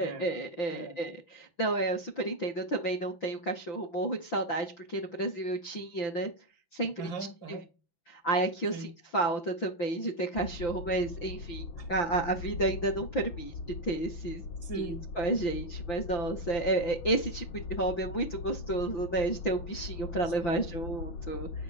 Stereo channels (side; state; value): right; late; 6.0 ms